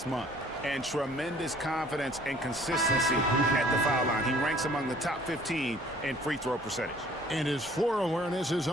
month, and tremendous confidence and consistency at the foul line. He ranks among the top 15 in free throw percentage. And his floor awareness is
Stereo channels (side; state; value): both; normal; correlation 0.55